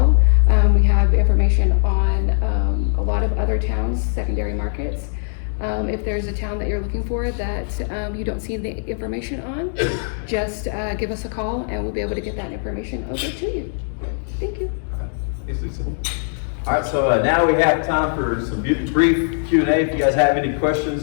We have information on a lot of other towns, secondary markets. If there's a town that you're looking for that you don't see the information on, just give us a call and we'll be able to get that information over to you. Thank you. Thanks, Lisa. All right, so now we have time for some brief Q&A. If you guys have any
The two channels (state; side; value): silent; right; 65 dB below the other